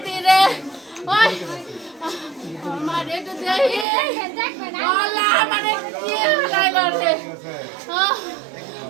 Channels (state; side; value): drops out; left; at 3.9 s